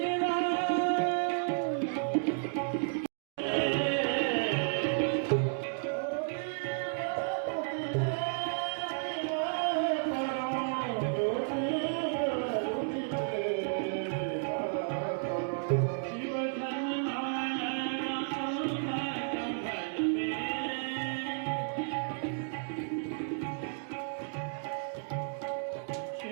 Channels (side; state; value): left; silent; digital silence